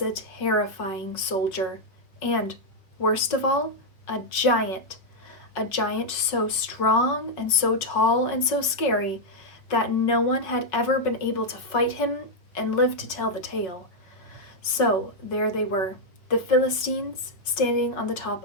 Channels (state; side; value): late; right; 5.5 ms